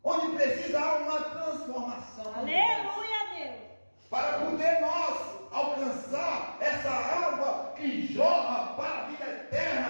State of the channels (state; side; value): inverted; both; correlation -1.00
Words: Onde precisa haver uma transformação. Aleluia, Deus. Para poder nós alcançar essa água que jorra para a vida